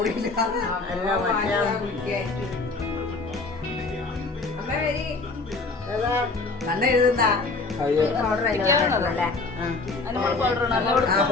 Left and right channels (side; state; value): right; quieter; 3.7 dB